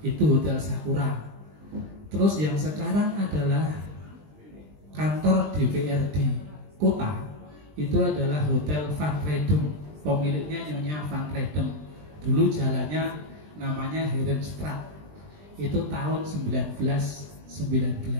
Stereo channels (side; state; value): left; late; 20 ms